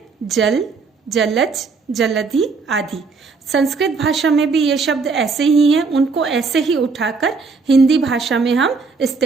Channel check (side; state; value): left; quieter; 4.6 dB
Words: जल, जलज, जलधि आदि। संस्कृत भाषा में भी ये शब्द ऐसे ही हैं, उनको ऐसे ही उठाकर हिंदी भाषा में हम